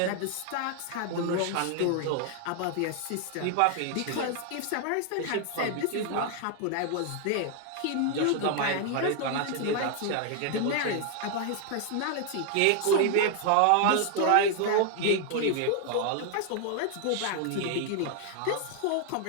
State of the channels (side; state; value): both; different; correlation 0.00